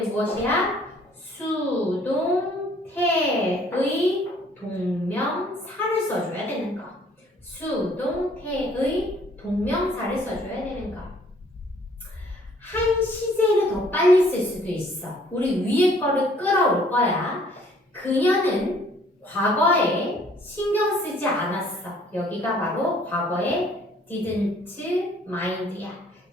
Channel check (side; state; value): both; normal; correlation 0.59